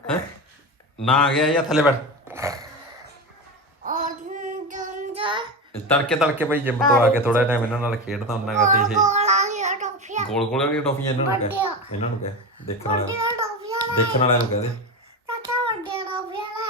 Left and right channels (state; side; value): normal; both; correlation 0.21